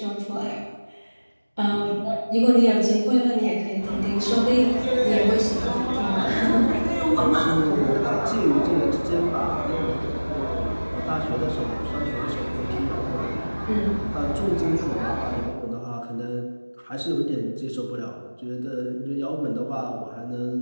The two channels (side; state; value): both; inverted; correlation -1.00